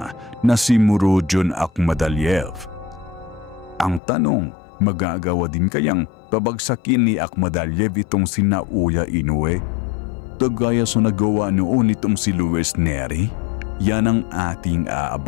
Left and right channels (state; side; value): drops out; right; at 4.0 s